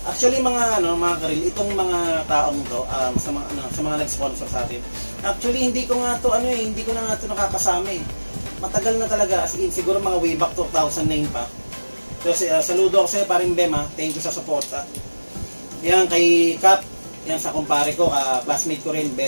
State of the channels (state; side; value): inverted; both; correlation -1.00